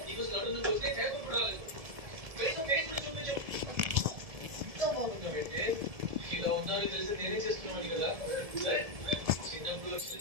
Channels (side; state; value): left; late; 1.7 ms